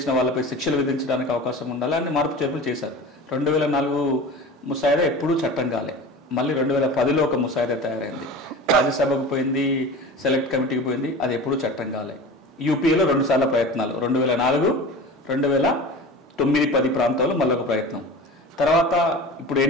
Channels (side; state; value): both; normal; correlation 0.35